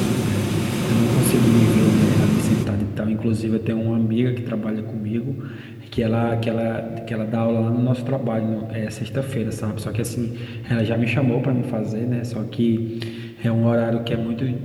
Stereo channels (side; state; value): both; identical; correlation 1.00